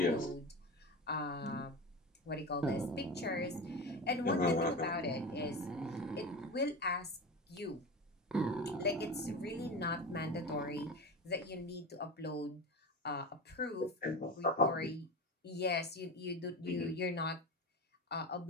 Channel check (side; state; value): both; normal; correlation 0.26